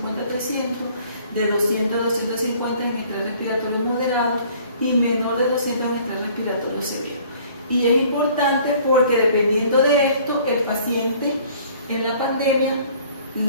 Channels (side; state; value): both; inverted; correlation -0.55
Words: a 300, de 200 a 250 en estrés respiratorio moderado y menor de 200 en estrés respiratorio severo. Y es importante porque dependiendo de esto, el paciente en la pandemia